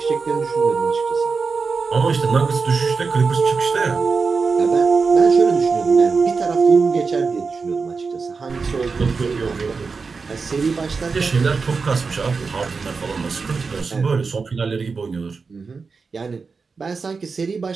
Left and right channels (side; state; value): left; quieter; 4.7 dB